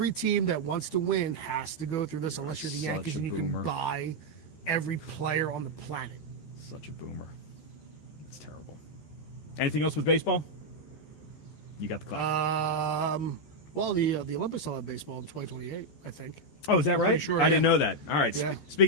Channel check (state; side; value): late; right; 13 ms